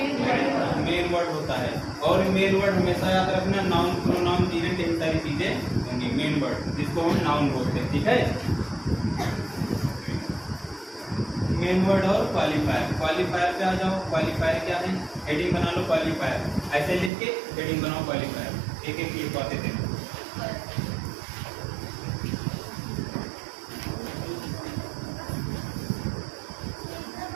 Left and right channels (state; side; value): drops out; left; at 17.1 s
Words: वर्ड होता है। और मेन वर्ड हमेशा याद रखना, नाउन, प्रोनाउन, जीरेंट, यही सारी चीजें होंगी मेन वर्ड, जिसको हम नाउन बोलते हैं। ठीक है, मेन वर्ड और क्वालिफायर। क्वालिफायर पे आ जाओ। क्वालिफायर क्या है? हेडिंग बना लो क्वालिफायर, ऐसे लिख के हेडिंग बनाओ क्वालिफायर। एक एक लिखवाते थे।